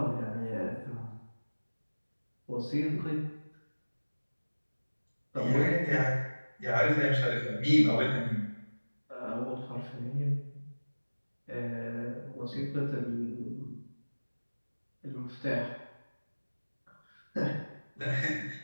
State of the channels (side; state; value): both; inverted; correlation -1.00